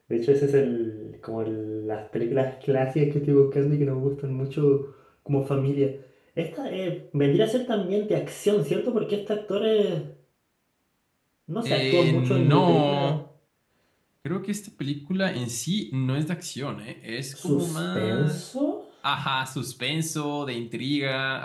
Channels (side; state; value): both; identical; correlation 1.00